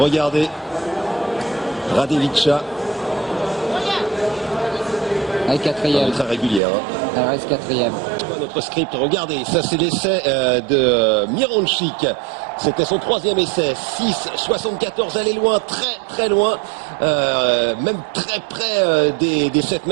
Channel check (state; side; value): drops out; left; at 6.6 s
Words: Radevica. Elle est 4e. Très régulière. Hein. Elle reste 4e. Notre script, regardez, ça c'est l'essai de Mironchik. C'était son 3e essai, 6,74, elle est loin, très loin, même très près des 7